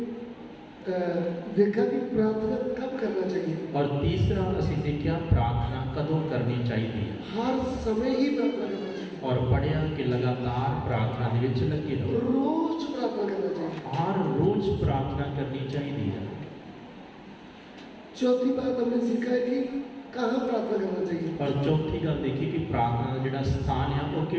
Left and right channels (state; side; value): identical; both; correlation 1.00